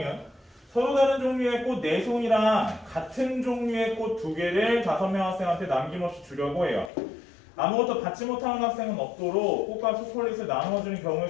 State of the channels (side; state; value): right; drops out; at 6.9 s